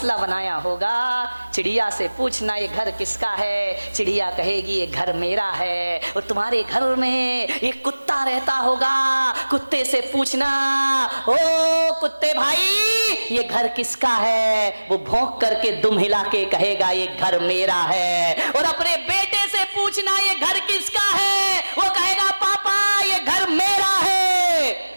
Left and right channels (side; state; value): both; inverted; correlation -1.00